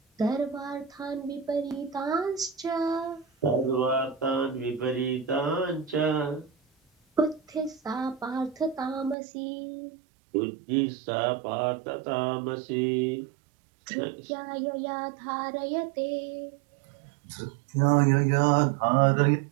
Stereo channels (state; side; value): drops out; left; at 9.2 s